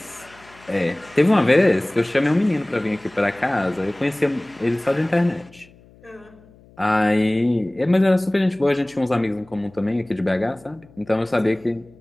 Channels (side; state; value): left; noise; hum, 26 dB below the sound